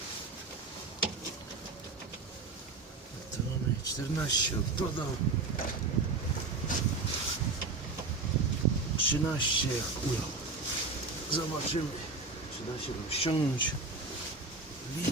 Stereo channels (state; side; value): quieter; left; 3.8 dB